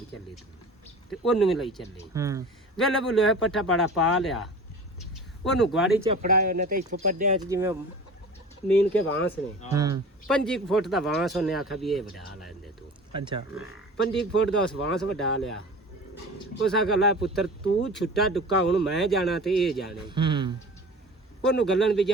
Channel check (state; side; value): normal; both; correlation 0.38